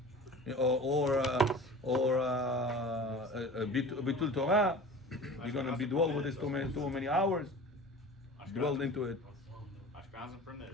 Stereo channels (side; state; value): both; normal; correlation 0.38